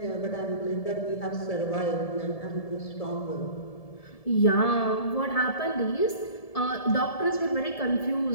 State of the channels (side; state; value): right; late; 1.7 ms